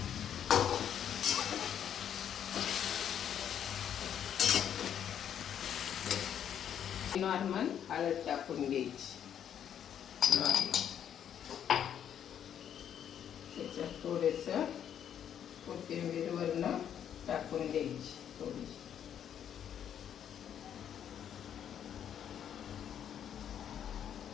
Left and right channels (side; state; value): right; quieter; 9.3 dB